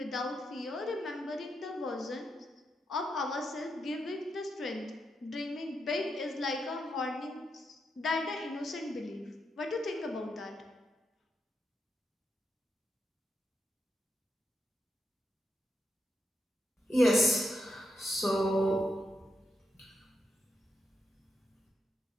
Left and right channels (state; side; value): normal; both; correlation 0.83